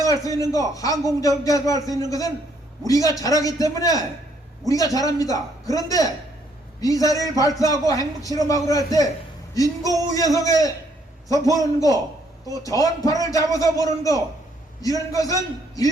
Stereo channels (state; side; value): normal; both; correlation 0.69